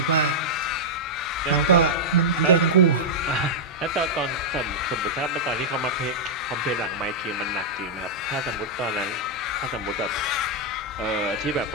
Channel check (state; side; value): normal; both; correlation -0.07